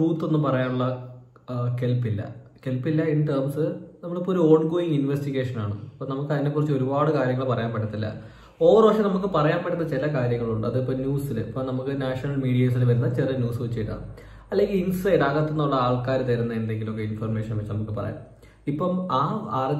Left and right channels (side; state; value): both; identical; correlation 1.00